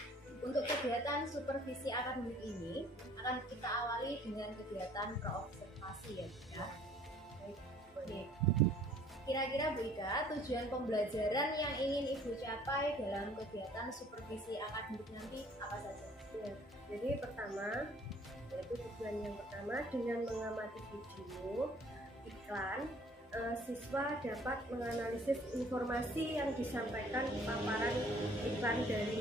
untuk kegiatan supervisi akademik ini akan kita awali dengan kegiatan praobservasi ya Bu Ika. Baik. Kira-kira Bu Ika, tujuan pembelajaran yang ingin Ibu capai dalam kegiatan supervisi akademik nanti apa saja? Ya, jadi pertama, yaitu tujuan yang pertama dengan mengamati video iklan, siswa dapat menganalisis informasi yang disampaikan di paparan iklan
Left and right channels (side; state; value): both; normal; correlation 0.56